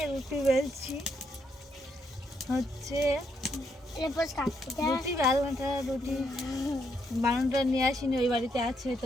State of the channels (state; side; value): normal; both; correlation 0.76